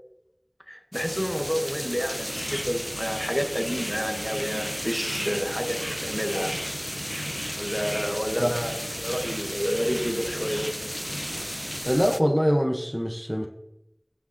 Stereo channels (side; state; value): both; identical; correlation 1.00